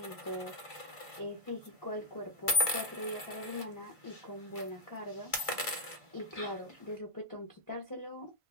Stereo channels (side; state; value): left; late; 1.5 ms